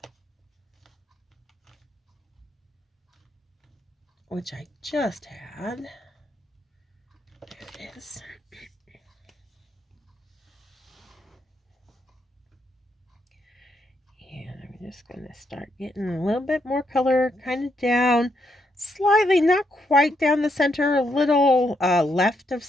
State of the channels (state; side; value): normal; both; correlation 0.78